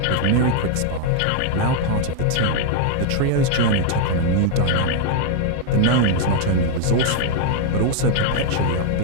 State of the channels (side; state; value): both; different; correlation 0.00